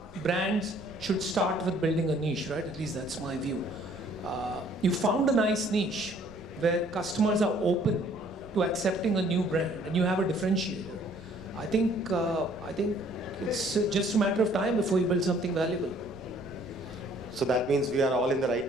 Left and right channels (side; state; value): right; noise; rumble, 24 dB below the sound